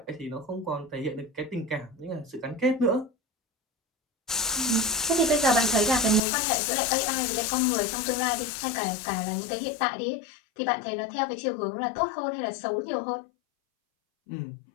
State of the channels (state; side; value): drops out; right; at 6.2 s